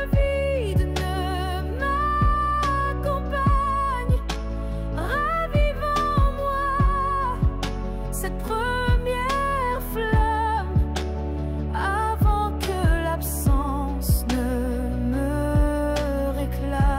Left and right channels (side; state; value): both; identical; correlation 1.00